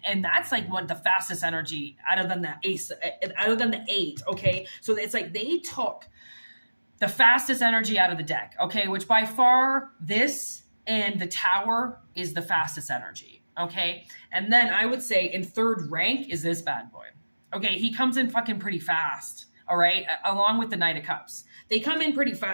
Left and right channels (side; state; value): both; inverted; correlation -1.00